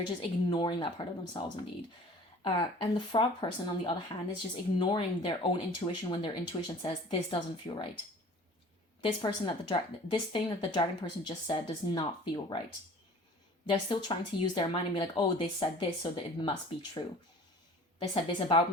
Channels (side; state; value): both; normal; correlation 0.46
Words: And the frog person, on the other hand, is just ignoring their own intuition when their intuition says, this doesn't feel right. This thing that the dragon person just said does not feel right. They're still trying to use their mind and be like, oh, they said this, so that it must be true. They said this about